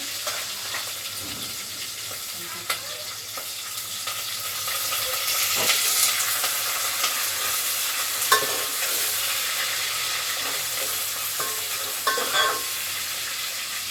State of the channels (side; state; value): both; identical; correlation 1.00